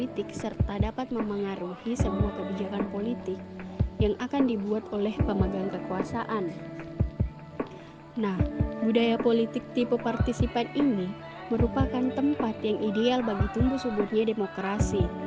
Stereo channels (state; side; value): identical; both; correlation 1.00